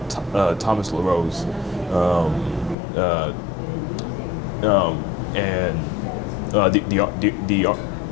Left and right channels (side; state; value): right; drops out; at 2.8 s